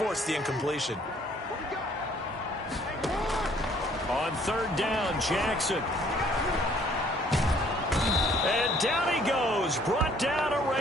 the incompletion. On 3rd down, Jackson. And down he goes, brought down a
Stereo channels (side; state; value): both; normal; correlation 0.61